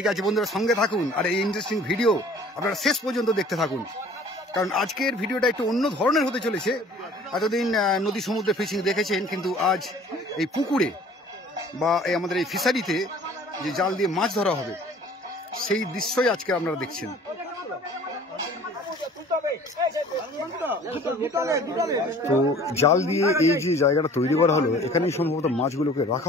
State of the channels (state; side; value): normal; both; correlation 0.50